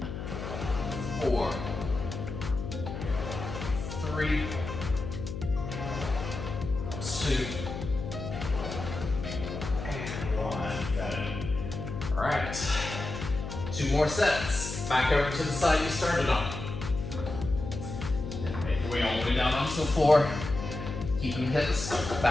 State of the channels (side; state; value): left; noise; hum, 7 dB below the sound